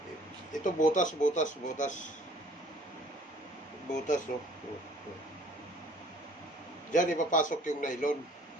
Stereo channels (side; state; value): both; normal; correlation 0.55